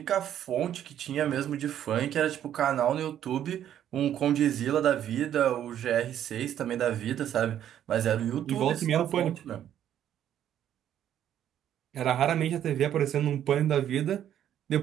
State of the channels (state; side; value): quieter; left; 10.6 dB